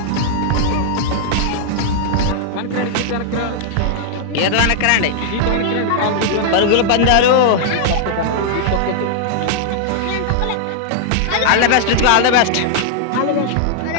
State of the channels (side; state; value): both; different; correlation -0.01